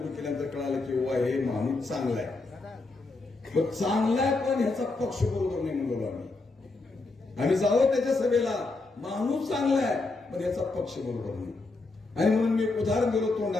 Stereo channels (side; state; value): right; quieter; 3.4 dB